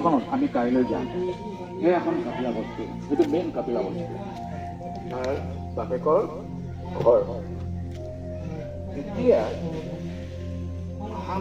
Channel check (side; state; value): both; identical; correlation 1.00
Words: আমি কাইলৈ যাম এই এখন কাপিলা বস্তু এইটো মেইন কাপিলা বস্তু তাৰ বাপেকৰ ঘৰ এতিয়া